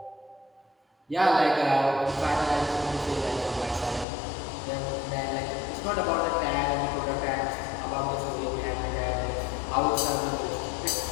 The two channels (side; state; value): right; drops out; at 4.0 s